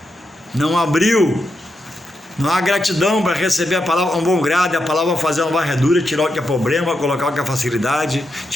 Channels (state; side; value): normal; both; correlation 0.85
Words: Não abriu. Não há gratidão para receber a palavra com bom grado, a palavra fazer uma varredura, tirar o que é problema, colocar o que é facilidade,